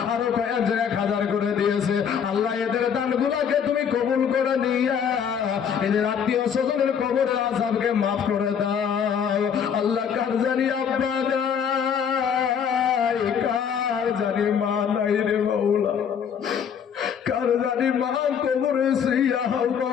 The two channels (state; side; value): quieter; right; 7.6 dB